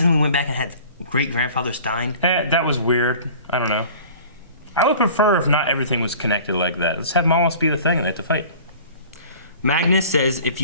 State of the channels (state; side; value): inverted; both; correlation -0.45